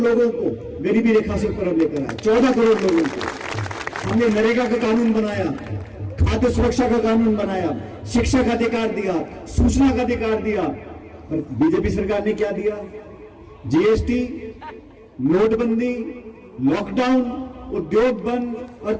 को गरीबी रेखा से ऊपर लेकर आया। 14 करोड़ लोगों को हमने नरेगा का कानून बनाया, खाद्य सुरक्षा का कानून बनाया, शिक्षा का अधिकार दिया, सूचना का अधिकार दिया। और बीजेपी सरकार ने क्या दिया? जीएसटी, नोटबंदी, लॉकडाउन, उद्योग बंद,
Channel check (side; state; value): both; identical; correlation 1.00